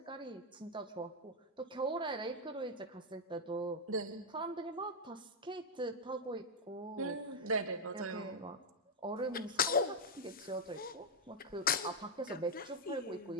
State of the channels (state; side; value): normal; both; correlation 0.00